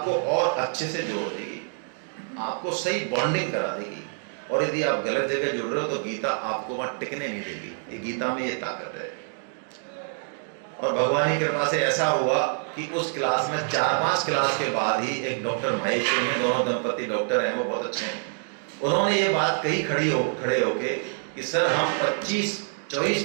और अच्छे से जोड़ देगी, आपको सही बॉन्डिंग करा देगी, और यदि आप गलत जगह जुड़ रहे हो तो गीता आपको वहां टिकने नहीं देगी। ये गीता में ये ताकत है। और भगवान की कृपा से ऐसा हुआ कि उस क्लास में 4-5 क्लास के बाद ही एक डॉक्टर महेश्वरी में, दोनों दंपति डॉक्टर हैं, वो बहुत अच्छे हैं, उन्होंने ये बात कही खड़े होके कि सर हम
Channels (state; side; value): silent; left; 61 dB below the other